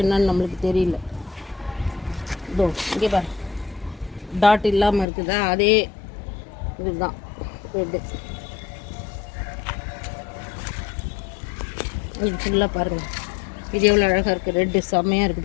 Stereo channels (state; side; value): drops out; right; at 5.1 s